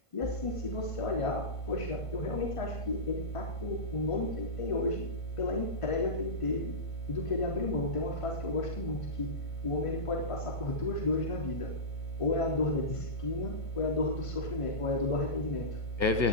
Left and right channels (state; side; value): late; right; 1.5 ms